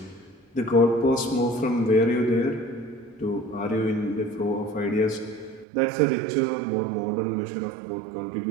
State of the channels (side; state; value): left; drops out; at 5.7 s